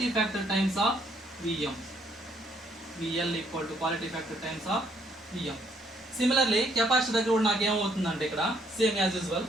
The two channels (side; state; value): both; normal; correlation 0.69